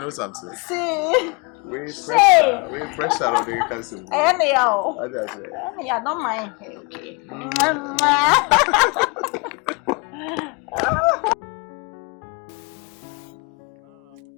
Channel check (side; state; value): right; quieter; 31.0 dB